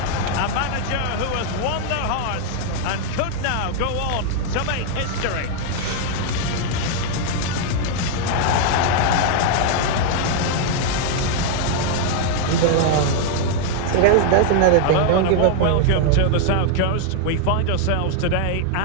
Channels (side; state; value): both; different; correlation 0.00